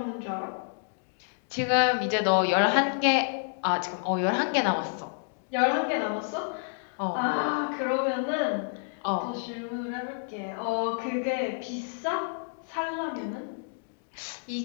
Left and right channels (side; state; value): right; silent; digital silence